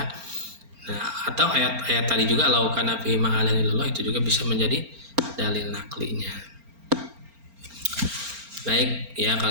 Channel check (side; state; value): left; late; 4.4 ms